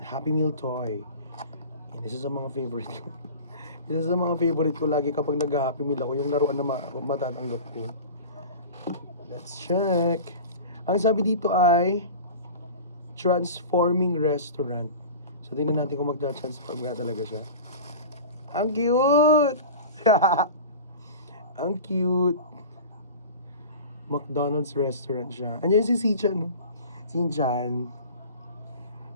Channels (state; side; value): inverted; both; correlation -0.36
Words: Happy Meal toy. Yan, isa sa mga favorite ko. Isa sa mga favorite ko lagi kapag nag-Happy Meal ako, yung laruan na matatanggap ko. Let's check. Ang sabi dito ay Transforming Restaurant. So, tingnan natin kung magta-transform nga talaga siya. Ang cute! Ang cute! McDonald's restaurant siya. Andiyan si Shin-chan, no? Shin-chan.